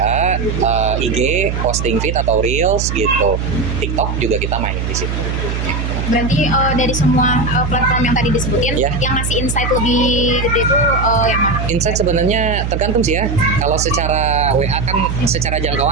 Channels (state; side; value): noise; right; hum, 2 dB below the sound